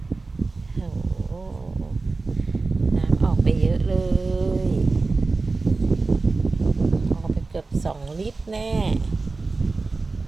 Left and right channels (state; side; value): quieter; left; 3.7 dB